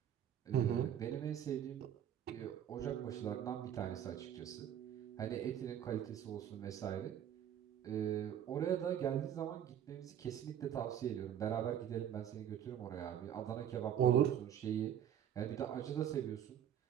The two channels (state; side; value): quieter; left; 9.9 dB